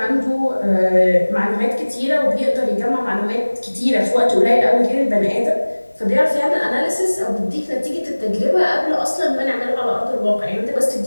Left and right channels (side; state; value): both; inverted; correlation -1.00